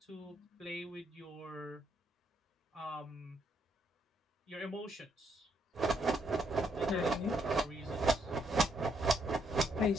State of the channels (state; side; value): normal; both; correlation 0.73